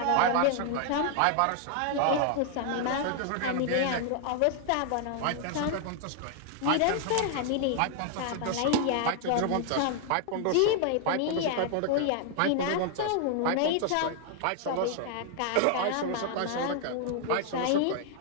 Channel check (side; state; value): both; different; correlation 0.00